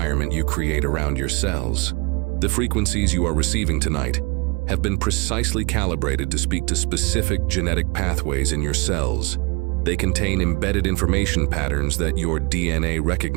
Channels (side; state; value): left; quieter; 29.3 dB